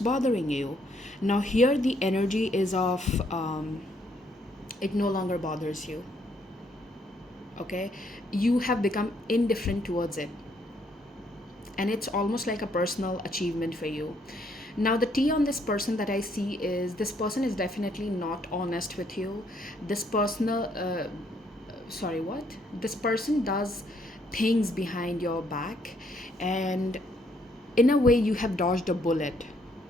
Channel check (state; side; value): normal; both; correlation 0.70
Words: you. Now here the energy is of it no longer bothers you. okay? You have become indifferent towards it, and it's almost like a personal achievement for you. Now, the T on this person that I see is, this person is definitely not honest with you. This personal sorry, what, this person does things behind your back, and in a way you have dodged a bullet